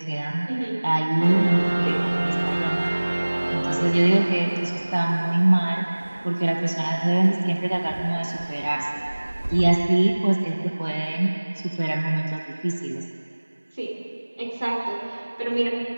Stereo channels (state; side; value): inverted; both; correlation -1.00